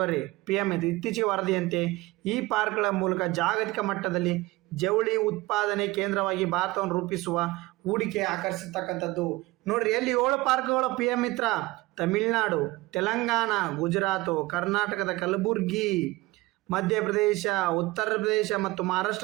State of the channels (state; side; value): quieter; left; 20.7 dB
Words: PM ಇದು. ಇತ್ತೀಚೆಗೆ ವರದಿಯಂತೆ ಈ ಪಾರ್ಕ್ಗಳ ಮೂಲಕ ಜಾಗತಿಕ ಮಟ್ಟದಲ್ಲಿ ಜವಳಿ ಉತ್ಪಾದನೆ ಕೇಂದ್ರವಾಗಿ ಭಾರತವನ್ನು ರೂಪಿಸುವ ಹೂಡಿಕೆ ಆಕರ್ಷಿಸ್ತಕ್ಕಂಥದ್ದು. ನೋಡ್ರಿ ಎಲ್ಲಿ 7 ಪಾರ್ಕ್ಗಳು PM ಮಿತ್ರ: ತಮಿಳುನಾಡು, ತೆಲಂಗಾಣ, ಗುಜರಾತು, ಕರ್ನಾಟಕದ ಕಲಬುರ್ಗಿ, ಮಧ್ಯಪ್ರದೇಶ, ಉತ್ತರ ಪ್ರದೇಶ ಮತ್ತು